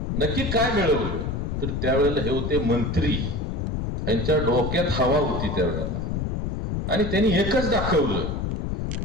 नक्की काय मिळवलं. तर त्यावेळेला हे होते मंत्री, यांच्या डोक्यात हवा होती त्यावेळेला, आणि त्यांनी एकच दाखवलं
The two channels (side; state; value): left; noise; rumble, 2 dB below the sound